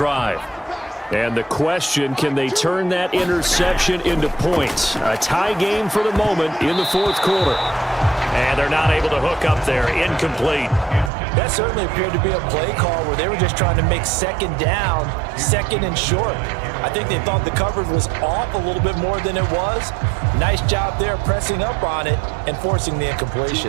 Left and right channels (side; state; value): left; drops out; at 11.1 s